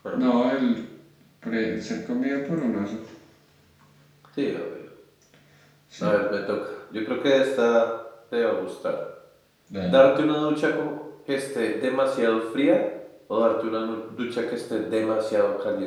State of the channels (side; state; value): both; identical; correlation 1.00